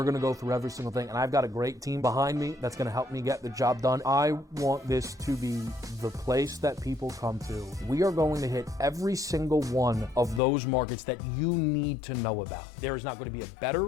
going to go through every single thing, and I've got a great team behind me that's going to help me get the job done. I want this to be the place that people come to. We are going to hit every single one of those markets that you need to know about. There is not going to be a better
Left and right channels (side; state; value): right; drops out; at 10.4 s